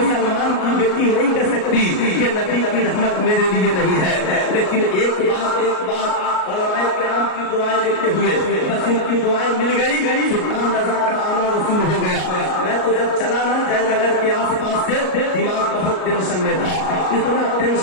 की बेटी नहीं कह सकती कि नबी की रहमत मेरे लिए नहीं है। लेकिन एक बात उलमाए किराम की दुआएं लेते हुए बस उनकी दुआएं मिल गई, सुल्तान रजा का आना रसूल हो गया। मैं तो जब चला ना जयनगर के आसपास से दिमाग बहुत टेंशन में था, इतना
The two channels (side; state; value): right; late; 38 ms